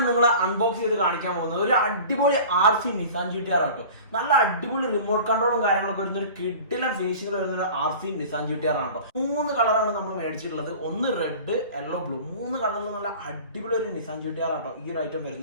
നിങ്ങൾ അൺബോക്സ് ചെയ്ത് കാണിക്കാൻ പോകുന്നത് ഒരു അടിപൊളി RC നിസാൻ GT-R ആട്ടോ. നല്ല അടിപൊളി റിമോട്ട് കൺട്രോളും കാര്യങ്ങളൊക്കെ വരുന്ന ഒരു കിഡിലും ഫിനിഷിംഗ് വരുന്ന ഒരു RC നിസാൻ GT-R ആട്ടോ. 3 കളറാണ് നമ്മൾ മേടിച്ചിട്ടുള്ളത്. ഒന്ന് റെഡ്, യെല്ലോ, ബ്ലൂ. 3 കളറിൽ നല്ല അടിപൊളി ഒരു നിസാൻ GT-R ആട്ടോ ഈ ഒരു ഐറ്റം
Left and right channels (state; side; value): inverted; both; correlation -0.40